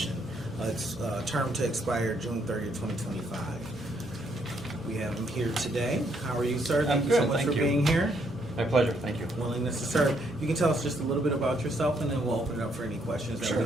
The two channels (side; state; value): both; normal; correlation 0.72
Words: It's term to expire June 30th, 2025. We have him here today. How are you, sir? Thank I'm you so good, much thank for you. being here. My pleasure, thank you. Willingness to serve. You can tell us just a little bit about yourself, and then we'll open it up for any questions that